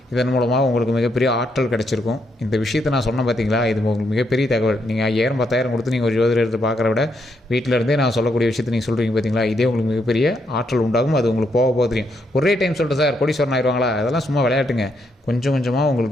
இதன் மூலமாக உங்களுக்கு மிகப்பெரிய ஆற்றல் கிடச்சிருக்கும். இந்த விஷயத்தை நான் சொன்னேன் பார்த்தீங்களா, இது உங்களுக்கு மிகப்பெரிய தகவல். நீங்கள் 5000-10,000 கொடுத்து நீங்கள் ஒரு ஜோதிடர் எடுத்து பார்க்குற விட வீட்டில் இருந்தே நான் சொல்லக்கூடிய விஷயத்தை நீங்கள் சொல்கிறீங்க பார்த்தீங்களா, இதே உங்களுக்கு மிகப்பெரிய ஆற்றல் உண்டாகும். அது உங்களுக்கு போக தெரியும். ஒரே டைம் சொல்லிட்டு சார் கோடீஸ்வரன் ஆயிடுவாங்களா, அதெல்லாம் சும்மா விளையாட்டுங்க. கொஞ்சம் கொஞ்சமாக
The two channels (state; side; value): normal; both; correlation 0.77